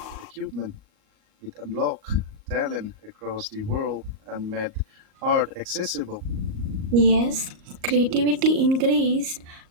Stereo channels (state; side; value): late; left; 38 ms